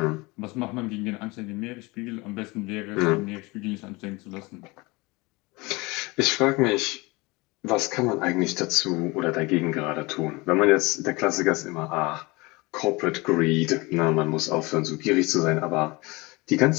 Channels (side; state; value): right; quieter; 24.2 dB